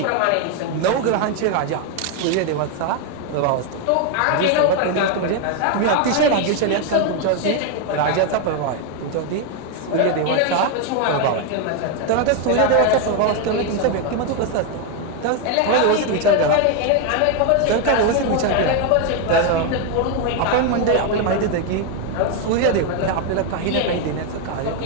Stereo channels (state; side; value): different; both; correlation 0.01